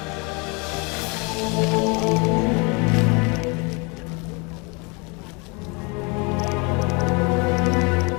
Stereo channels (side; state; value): right; quieter; 30.5 dB